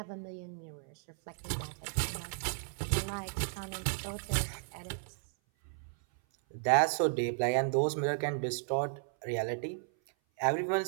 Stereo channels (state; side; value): silent; left; 55 dB below the other